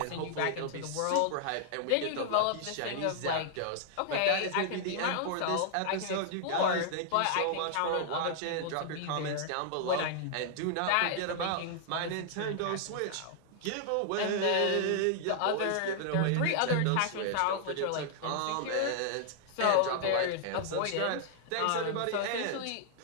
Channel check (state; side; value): different; both; correlation -0.01